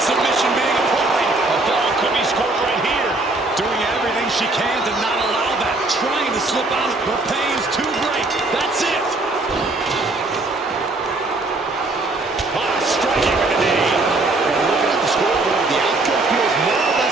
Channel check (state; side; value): quieter; left; 3.0 dB